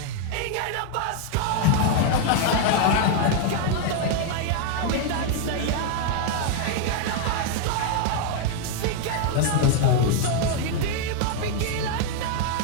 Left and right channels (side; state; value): both; different; correlation 0.00